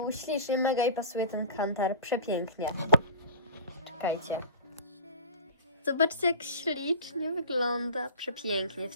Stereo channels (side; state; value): both; inverted; correlation -0.37